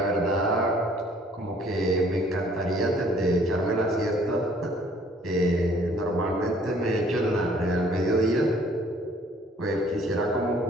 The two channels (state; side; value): normal; both; correlation 0.58